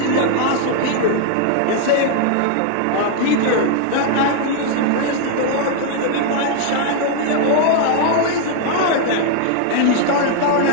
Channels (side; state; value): both; different; correlation 0.00